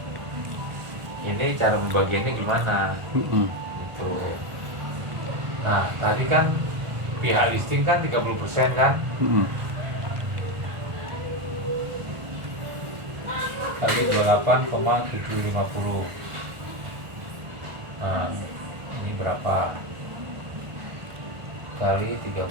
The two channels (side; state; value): left; late; 1.4 ms